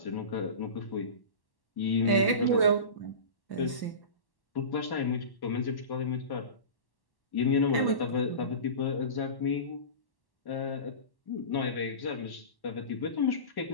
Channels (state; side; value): late; right; 1.1 ms